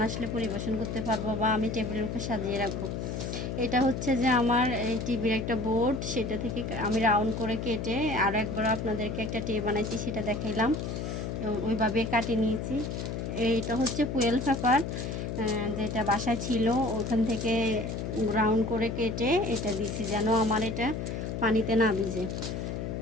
আসলে পরিবেশন করতে পারবো বা আমি টেবিলের উপর সাজিয়ে রাখবো। এটা হচ্ছে যে আমার এই টিভির একটা বোর্ড, সেটা থেকে আমি রাউন্ড করে কেটে আর একবার আপনাদেরকে একটা ট্রে বানাইছি, সেটা দেখাইলাম। ওইভাবে কাটিয়ে নিয়েছি। এইটা হচ্ছে ফুয়েল পেপার, যেটা বাসায় ছিল, ওখান থেকে রাউন্ড করে কেটে এটা দিছি যেন আমার এটা পানিতে না ভিজে।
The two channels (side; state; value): left; noise; hum, 4 dB below the sound